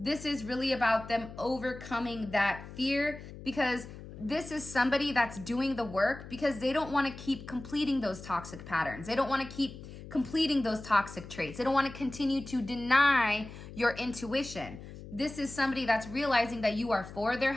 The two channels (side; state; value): left; noise; hum, 14 dB below the sound